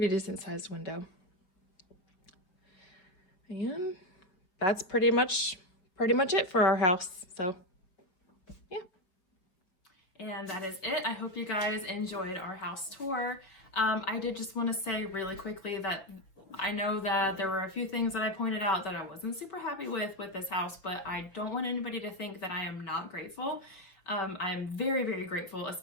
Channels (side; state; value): right; late; 5.2 ms